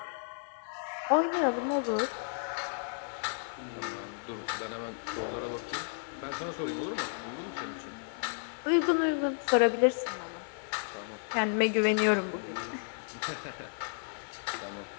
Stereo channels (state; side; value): silent; right; digital silence